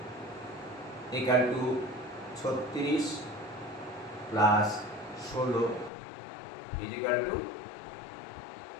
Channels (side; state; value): right; drops out; at 5.9 s